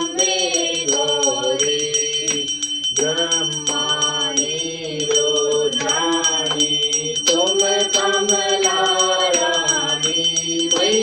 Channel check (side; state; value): both; identical; correlation 1.00